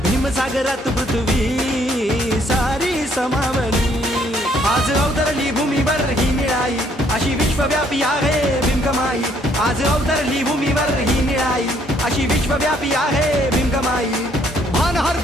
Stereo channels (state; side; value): normal; both; correlation 0.66